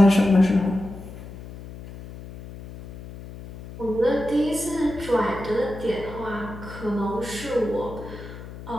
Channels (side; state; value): left; noise; hum, 14 dB below the sound